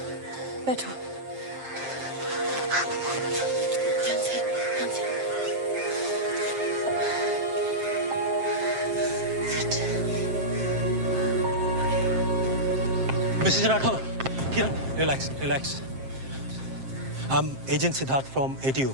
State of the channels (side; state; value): left; late; 7.6 ms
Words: बैठो। Mrs Rathore, Kiran, relax relax. I'm agent Siddharth from ATU।